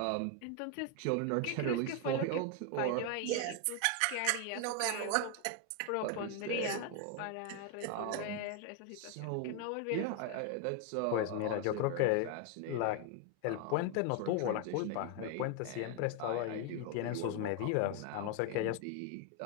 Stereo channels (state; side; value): different; both; correlation 0.01